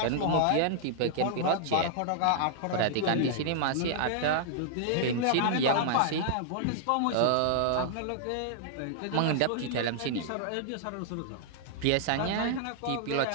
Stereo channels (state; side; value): different; both; correlation -0.01